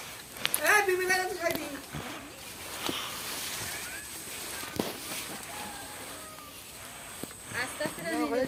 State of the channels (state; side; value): identical; both; correlation 1.00